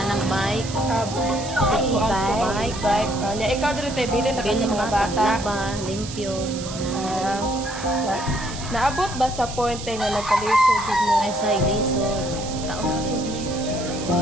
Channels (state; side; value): noise; right; hiss, 11 dB below the sound